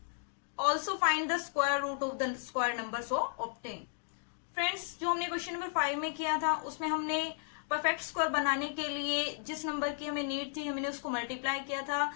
Also find the square root of the square number so obtain. Friends, जो हमने question number 5 में किया था उसमें हमने perfect square बनाने के लिए जिस नंबर की हमें नीड थी हमने उसको मल्टीप्लाई किया था.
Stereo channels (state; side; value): silent; right; digital silence